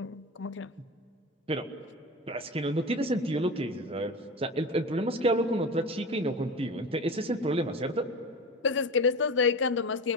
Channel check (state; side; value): normal; both; correlation 0.29